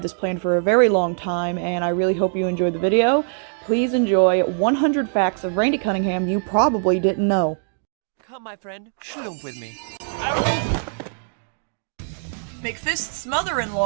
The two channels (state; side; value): silent; left; digital silence